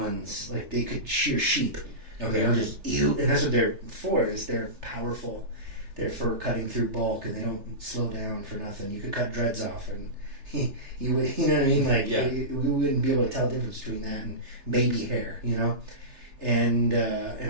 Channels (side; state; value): left; late; 3.3 ms